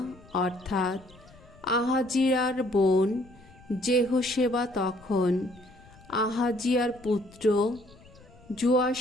অর্থাৎ আহাজিয়ার বোন যেহোশেবা তখন আহাজিয়ার পুত্র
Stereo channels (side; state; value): left; noise; rumble, 24 dB below the sound